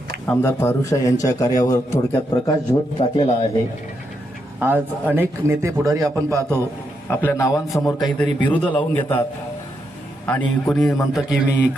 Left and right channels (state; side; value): normal; both; correlation 0.81